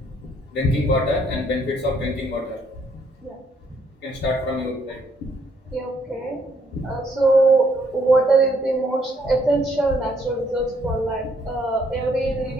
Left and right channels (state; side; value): normal; both; correlation 0.69